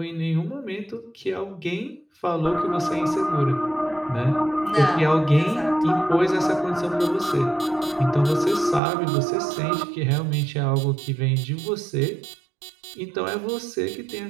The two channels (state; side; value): drops out; left; at 8.8 s